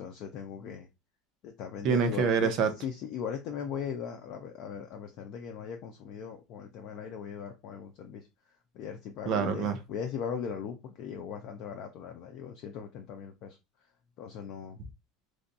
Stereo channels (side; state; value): both; normal; correlation 0.32